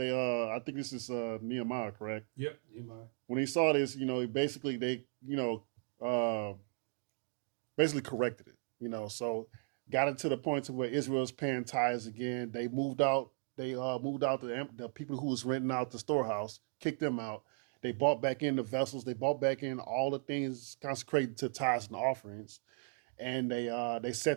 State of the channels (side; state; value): left; silent; 53 dB below the other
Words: I think this is Nehemiah, correct? Yep, Nehemiah. When they saw this, basically they basically corrected it. So got it to the point to where Israel's paying tithes again. They moved out. They moved out the people who was renting out the storehouse, kicked them out. They bought back in the vessels. They bought back in all the things consecrated to tithes and offerings, and they